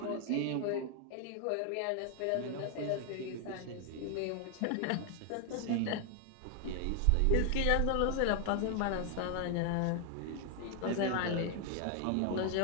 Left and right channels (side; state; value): both; different; correlation 0.00